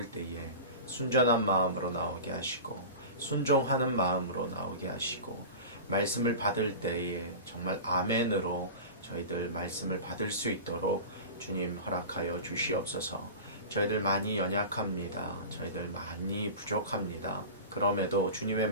때에 순전한 마음으로 나오게 하시고 순종하는 마음으로 나오게 하시고 말씀을 받을 때에 정말 아멘으로 저희들 말씀을 받을 수 있도록 주님 허락하여 주시옵소서. 저희들 많이 연약합니다. 저희들 많이 부족합니다. 그럼에도 주님의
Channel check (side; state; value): both; inverted; correlation -0.32